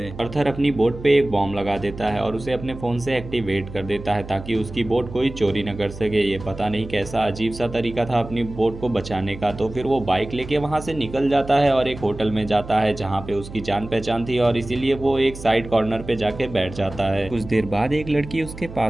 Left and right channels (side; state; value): right; noise; hum, 13 dB below the sound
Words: अर्थर अपनी बोट पे एक बॉम्ब लगा देता है और उसे अपने फोन से एक्टिवेट कर देता है ताकि उसकी बोट कोई चोरी न कर सके। ये पता नहीं कैसा अजीब सा तरीका था अपनी बोट को बचाने का। तो फिर वो बाइक लेके वहां से निकल जाता है और एक होटल में जाता है जहां पे उसकी जान पहचान थी और इसीलिए वो एक साइड कॉर्नर पे जाके बैठ जाता है। कुछ देर बाद एक लड़की उसके